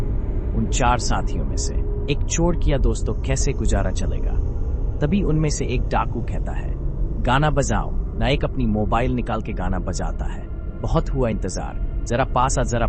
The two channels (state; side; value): identical; both; correlation 1.00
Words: उन 4 साथियों में से एक चोर किया दोस्तों कैसे गुजारा चलेगा। तभी उनमें से एक डाकू कहता है गाना बजाओ ना। एक अपनी मोबाइल निकाल के गाना बजाता है। बहुत हुआ इंतजार, जरा